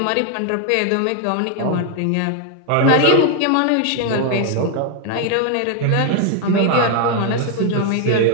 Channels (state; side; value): different; both; correlation 0.00